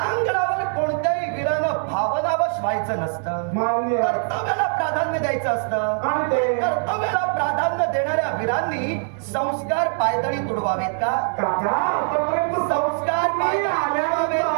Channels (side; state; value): left; silent; 64 dB below the other